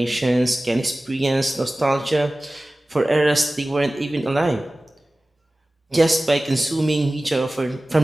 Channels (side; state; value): both; normal; correlation 0.97